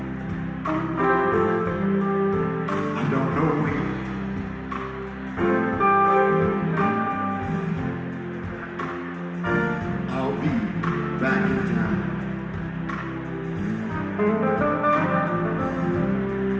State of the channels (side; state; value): both; identical; correlation 1.00